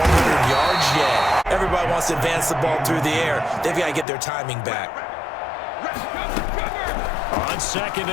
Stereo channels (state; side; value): drops out; right; at 4.0 s